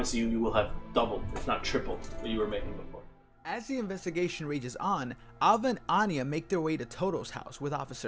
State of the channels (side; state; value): both; identical; correlation 1.00